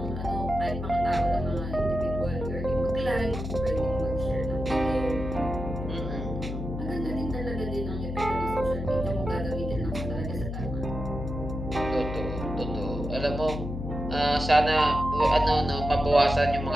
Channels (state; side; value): noise; left; hum, 5 dB below the sound